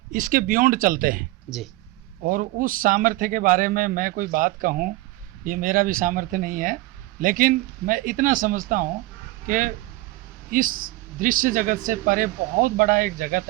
इसके बियॉन्ड चलते हैं जी। और उस सामर्थ्य के बारे में मैं कोई बात कहूँ, ये मेरा भी सामर्थ्य नहीं है, लेकिन मैं इतना समझता हूँ कि इस दृश्य जगत से परे बहुत बड़ा एक जगत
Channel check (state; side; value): quieter; left; 18.9 dB